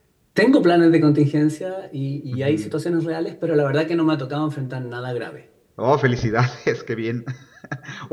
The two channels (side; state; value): both; identical; correlation 1.00